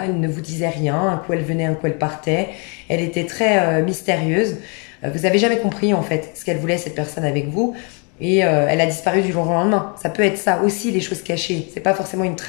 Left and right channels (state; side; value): quieter; right; 35.7 dB